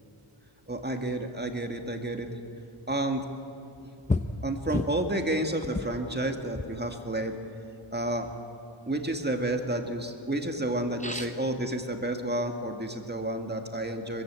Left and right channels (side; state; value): both; normal; correlation 0.30